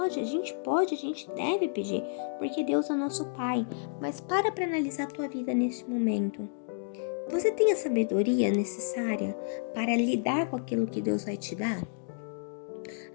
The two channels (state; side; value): silent; right; digital silence